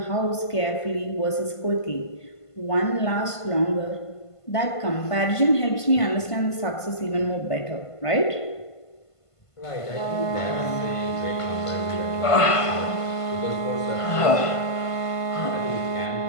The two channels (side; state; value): right; late; 1.5 ms